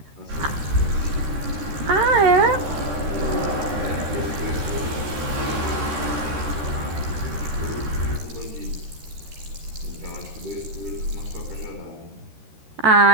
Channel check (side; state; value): left; late; 13 ms